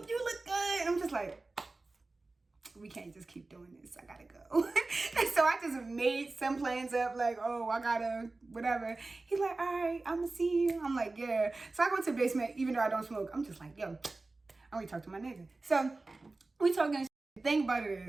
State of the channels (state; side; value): quieter; left; 3.4 dB